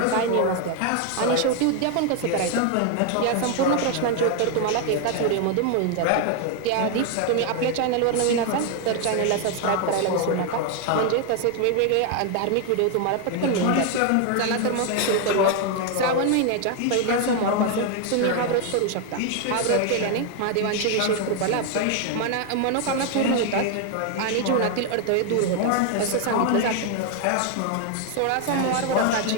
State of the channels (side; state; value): both; different; correlation 0.01